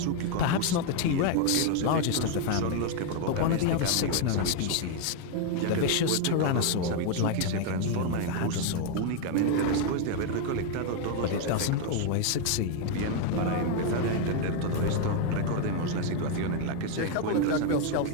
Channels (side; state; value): both; different; correlation 0.01